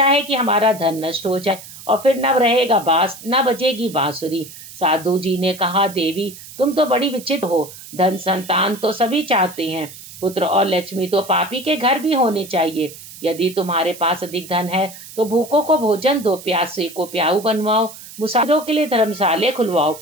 है कि हमारा धन नष्ट हो जाए और फिर न रहेगा बांस, न बजेगी बांसुरी। साधु जी ने कहा, देवी तुम तो बड़ी विचित्र हो। धन संतान तो सभी चाहते हैं, पुत्र और लक्ष्मी तो पापी के घर भी होने चाहिए। यदि तुम्हारे पास अधिक धन है तो भूखों को भोजन दो, प्यासे को प्याऊ बनवाओ, मुसाफिरों के लिए धर्मशाले खुलवाओ।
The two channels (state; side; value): noise; right; hiss, 16 dB below the sound